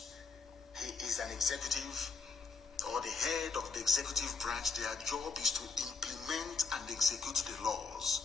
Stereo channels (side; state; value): right; quieter; 4.7 dB